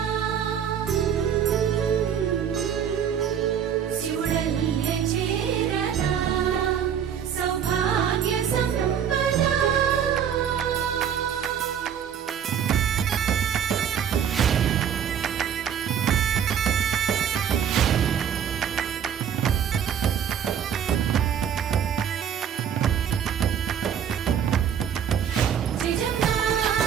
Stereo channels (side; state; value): left; quieter; 8.5 dB